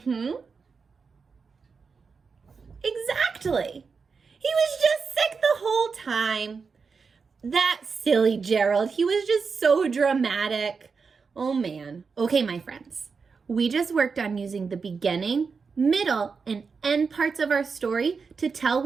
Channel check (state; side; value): quieter; left; 5.2 dB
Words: Exactly. He was just sick the whole time. That silly Gerald. He was just so dramatic. Oh man. Okay, my friends. We just worked on using the beginning, middle, and end parts of our story to tell